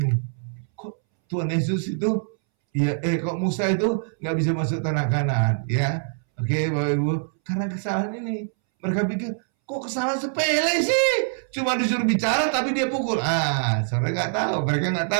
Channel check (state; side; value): silent; left; 63 dB below the other